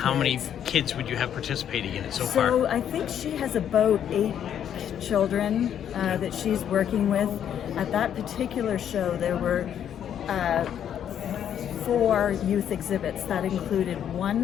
kids. many kids would you have participating in it so So far? I think she has about 8 children that she's working with. At that particular show, there were 4 youth exhibits. That included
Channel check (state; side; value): quieter; right; 9.5 dB